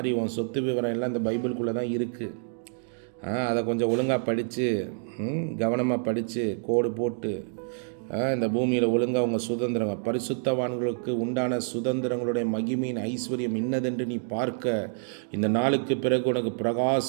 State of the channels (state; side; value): silent; left; 60 dB below the other